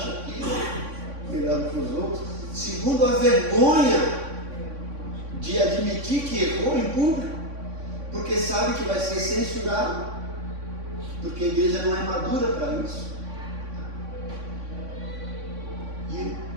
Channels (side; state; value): left; late; 3.6 ms